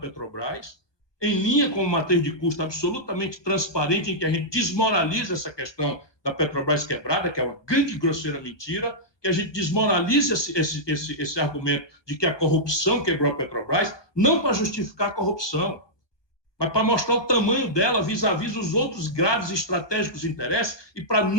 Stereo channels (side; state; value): right; late; 1.2 ms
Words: em linha com uma matriz de custo absolutamente transparente, em que a gente desmoraliza essa questão da Petrobras quebrada, que é uma grande e grosseira mentira, que a gente desmoraliza esse argumento de que a corrupção quebrou a Petrobras, não para justificar a corrupção, mas para mostrar o tamanho dela vis-à-vis os outros graves e estratégicos interesses e para